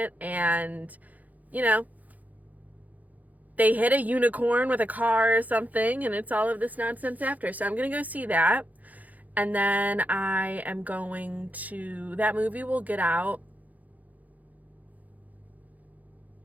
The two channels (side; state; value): left; late; 0.079 ms